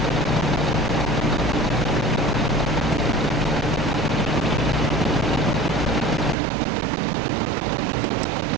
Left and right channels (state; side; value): drops out; left; at 6.4 s